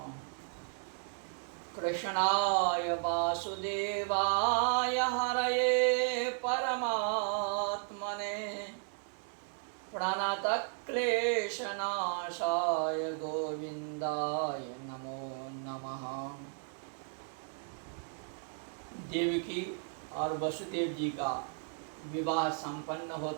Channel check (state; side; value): silent; left; 55 dB below the other